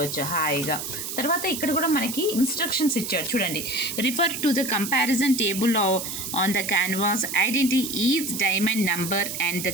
హాయిగా. తర్వాత ఇక్కడ కూడా మనకి ఇన్స్ట్రక్షన్స్ ఇచ్చాడు చూడండి. Refer to the comparison table on the canvas, identify each diamond number and the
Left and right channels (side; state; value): right; noise; hiss, 6 dB below the sound